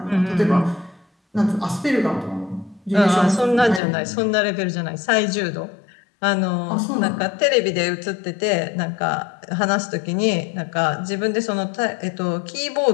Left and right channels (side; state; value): right; drops out; at 3.8 s